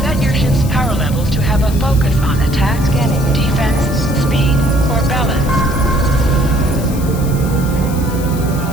set your ship's power levels to have a focus on attack, scanning, defense, speed, or balance.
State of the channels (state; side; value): noise; left; hiss, 15 dB below the sound